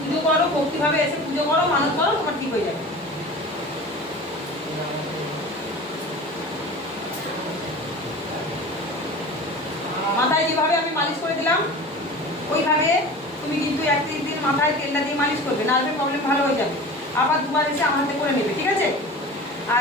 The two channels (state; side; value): normal; both; correlation 0.36